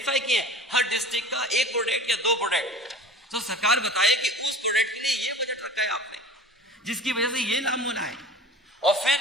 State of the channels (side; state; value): both; normal; correlation 0.39